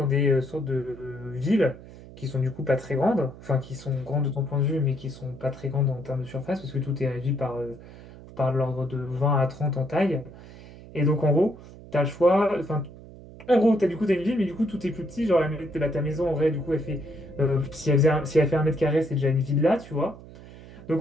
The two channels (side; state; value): right; noise; hum, 18 dB below the sound